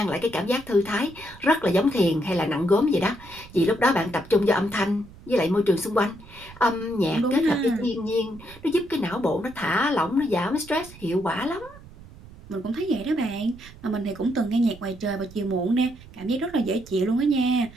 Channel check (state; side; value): noise; right; rumble, 20 dB below the sound